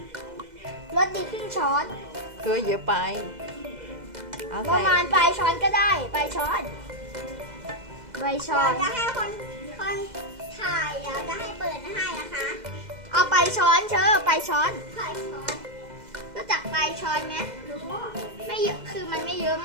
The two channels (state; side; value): late; left; 2.0 ms